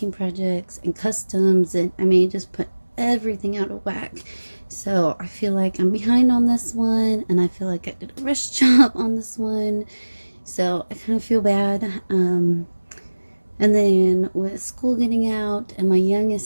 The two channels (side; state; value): both; inverted; correlation -1.00